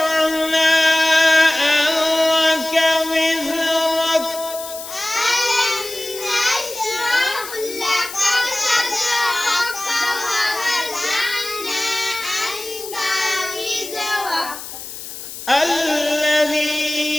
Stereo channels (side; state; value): left; noise; hiss, 11 dB below the sound